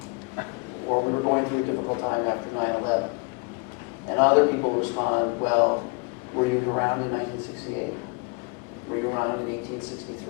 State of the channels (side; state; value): right; quieter; 31.0 dB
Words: or we were going through a difficult time after 9/11. And other people respond, well, were you around in 1968? Were you around in